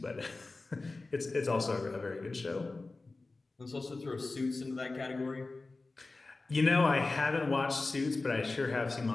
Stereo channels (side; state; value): right; quieter; 3.4 dB